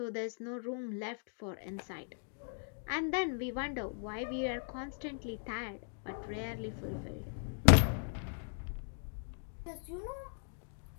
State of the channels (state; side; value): silent; right; digital silence